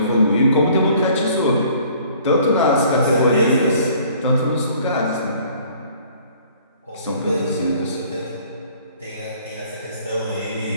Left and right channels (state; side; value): inverted; both; correlation -0.55